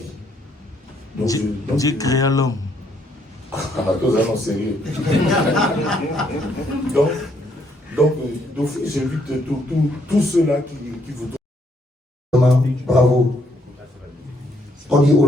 Donc, Dieu créa l'homme. tous allons sérieux. donc, d'office, j'invite tous ceux-là qui vous... Bravo. On dit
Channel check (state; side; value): normal; both; correlation 0.71